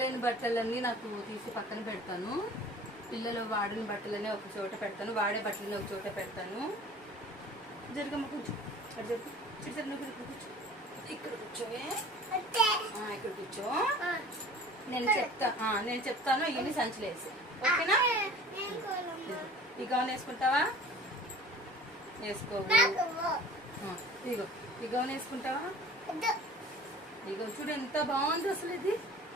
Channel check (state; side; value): normal; both; correlation 0.44